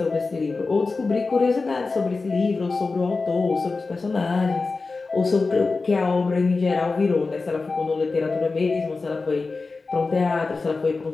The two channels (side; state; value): right; quieter; 3.9 dB